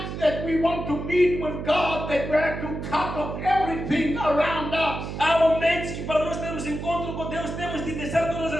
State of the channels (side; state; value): right; noise; hum, 6 dB below the sound